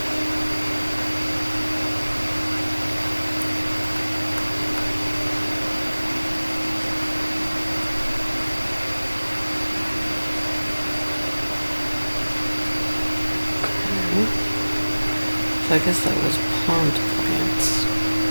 So I guess that was pond plants.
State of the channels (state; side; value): inverted; both; correlation -1.00